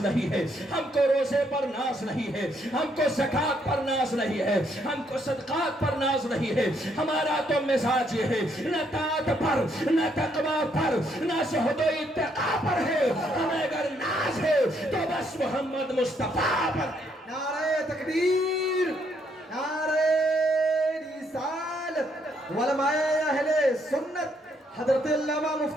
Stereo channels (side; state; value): both; normal; correlation 0.72